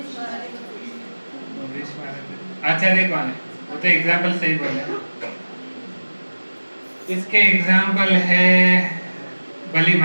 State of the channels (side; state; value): both; inverted; correlation -1.00